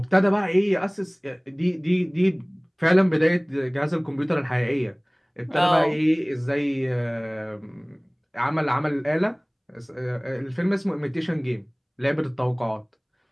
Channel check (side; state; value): both; identical; correlation 1.00